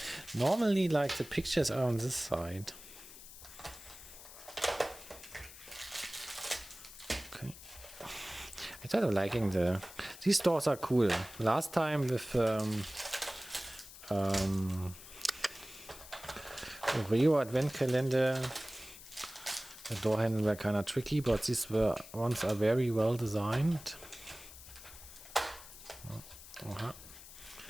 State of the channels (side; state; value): left; noise; hiss, 16 dB below the sound